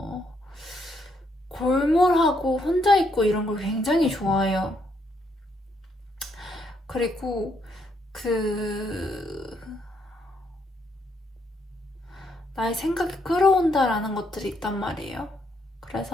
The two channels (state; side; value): normal; both; correlation 0.74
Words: 골몰하고 혼자 있고 이런 걸 굉장히 좋아해요. 그리고 나의 생각이 끌어온다라는 것들이 있단 말이에요.